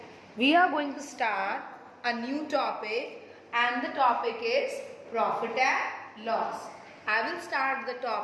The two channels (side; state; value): both; identical; correlation 1.00